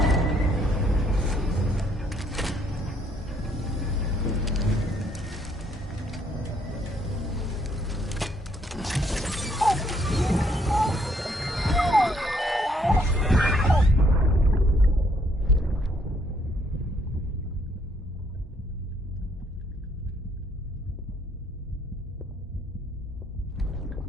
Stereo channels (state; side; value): normal; both; correlation 0.68